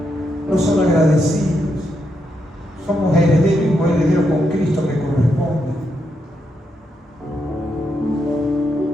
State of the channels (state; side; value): normal; both; correlation 0.81